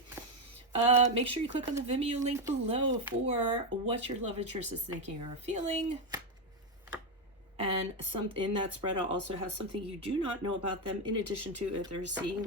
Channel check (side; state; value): both; normal; correlation 0.07